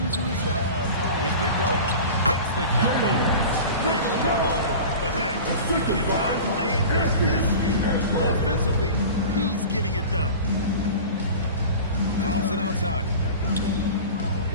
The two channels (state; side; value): inverted; both; correlation -0.35